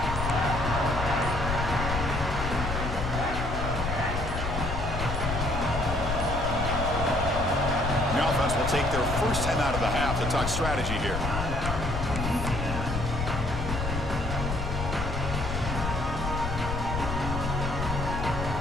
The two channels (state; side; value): noise; left; rumble, 3 dB below the sound